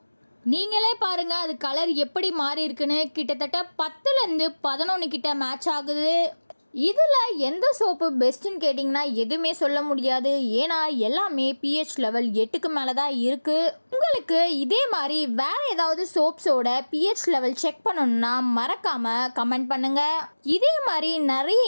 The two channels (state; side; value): inverted; both; correlation -1.00